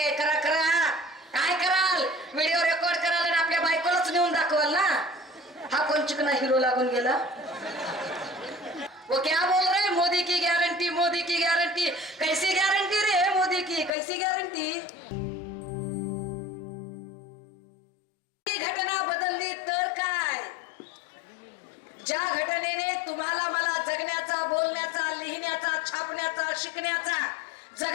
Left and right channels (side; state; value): right; drops out; at 13.9 s